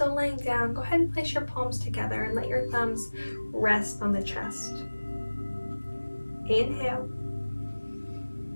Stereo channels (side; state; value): both; inverted; correlation -1.00